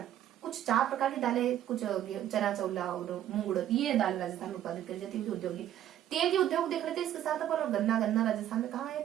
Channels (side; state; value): left; quieter; 11.7 dB